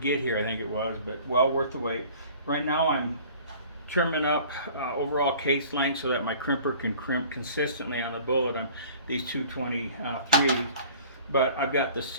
here, I think it was, but well worth the wait. Right now I'm trimming up overall case length so that my crimper can crimp consistently on the bullet on these 223s. But I've got the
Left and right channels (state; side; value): inverted; both; correlation -0.48